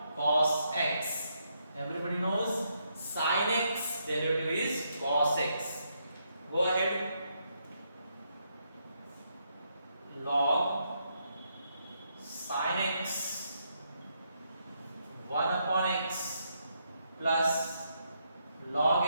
Cos x. Everybody knows sin x derivative is cos x. Go ahead. Log sin x 1 upon x plus log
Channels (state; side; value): inverted; both; correlation -0.78